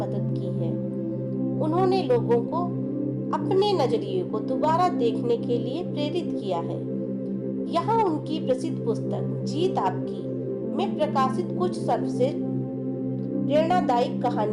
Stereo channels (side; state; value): both; identical; correlation 1.00